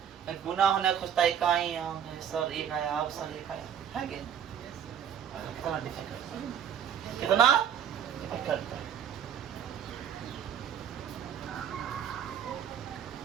गुना होने खुजता इकाई अंक है सर, 1 आया, अब सर 1 आया, है कि कितना डिफिकल्ट, कितना डिफिकल्ट है।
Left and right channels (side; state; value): left; quieter; 8.8 dB